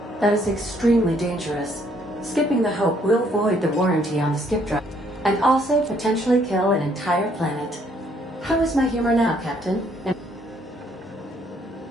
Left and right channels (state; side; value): normal; both; correlation 0.66